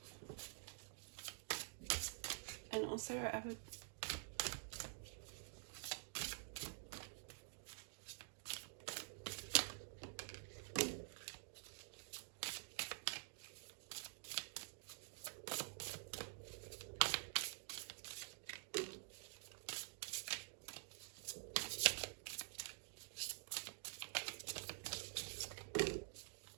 And also I would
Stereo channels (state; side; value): silent; left; digital silence